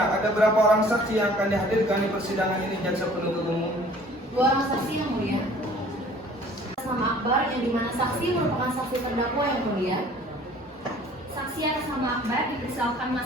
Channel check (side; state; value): both; normal; correlation 0.52